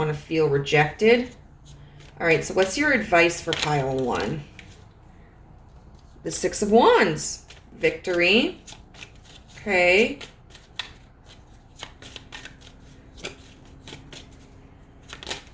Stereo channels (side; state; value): both; identical; correlation 1.00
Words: to feel rejected. All right, so what's your advice for pile 1? The 6 of Wands. Victory. Okay.